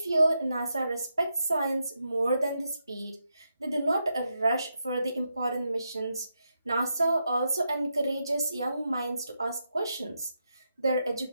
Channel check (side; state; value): both; inverted; correlation -0.84